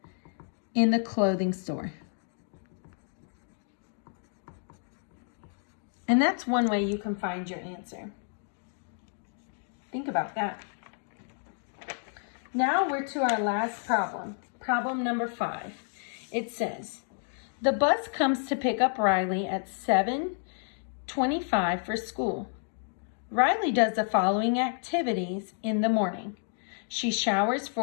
in the clothing store. And that's one way you can find your answer. Think about that. Now we're to our last problem. Problem number 5. It says, the bus comes to pick up Riley at 7:25 for school. Riley does the following activities in the morning. She showers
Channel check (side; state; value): right; silent; 56 dB below the other